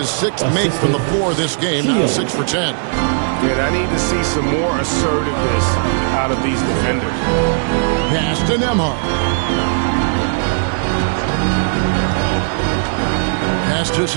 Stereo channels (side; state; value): left; silent; digital silence